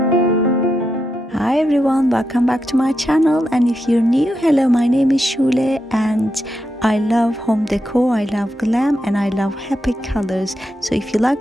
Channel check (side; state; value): both; normal; correlation 0.85